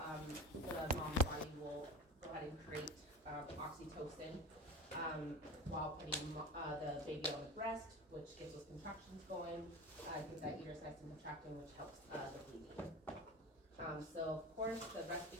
the mom's body will go ahead and create oxytocin while putting the baby on the breast, which gets those contractions going, gets that uterus nice and contracting, which helps the bleeding. So of course, the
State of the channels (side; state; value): both; normal; correlation 0.31